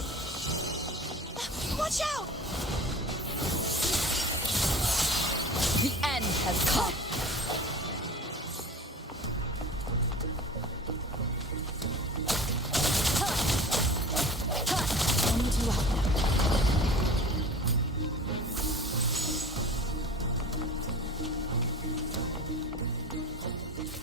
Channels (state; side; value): normal; both; correlation 0.38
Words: Watch out! The end has come. I need you out now.